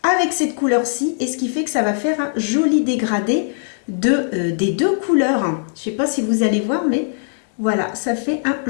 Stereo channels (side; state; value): right; silent; digital silence